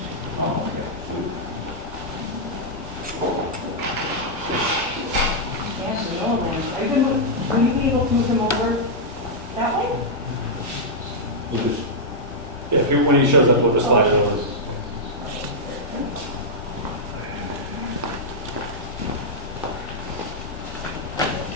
Oh, my God. Yeah, the old one. Will you be able to move him over that way? We'll just, Yeah, if you, when he shows up, we'll just slide it over.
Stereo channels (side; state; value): both; normal; correlation -0.06